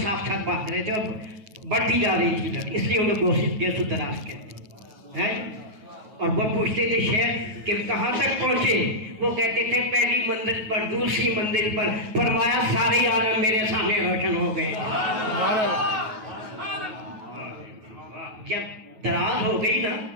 ساتھ ساتھ بھاگ رہے تھے اور بڑھتی جا رہی تھی لٹ, اس لیے انہیں گیسو دراز کہتے ہیں. اور وہ پوچھتے تھے شیخ کہ کہاں تک پہنچے؟ وہ کہتے تھے پہلی منزل پر, دوسری منزل پر. فرمایا سارے عالم میرے سامنے روشن ہو گئے. جب دراز ہو گئی نا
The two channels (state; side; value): late; left; 9.3 ms